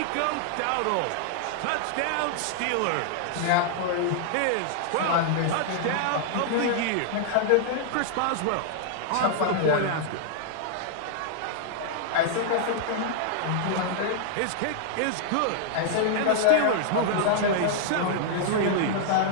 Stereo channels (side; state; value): both; different; correlation -0.01